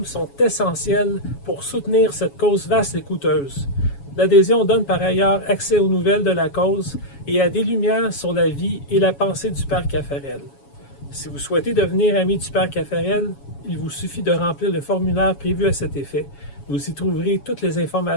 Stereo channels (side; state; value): right; late; 7.2 ms